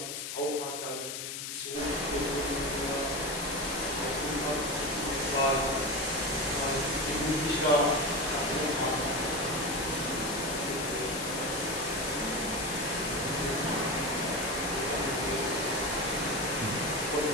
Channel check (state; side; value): noise; left; hiss, 6 dB below the sound